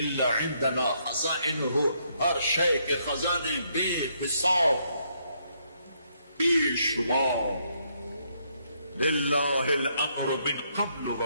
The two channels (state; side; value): inverted; both; correlation -0.73